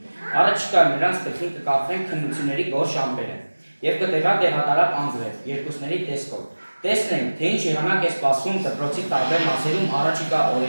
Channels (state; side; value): inverted; both; correlation -1.00